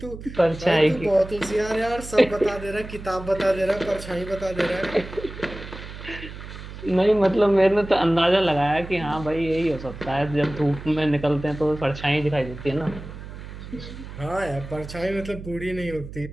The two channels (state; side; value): noise; right; hum, 12 dB below the sound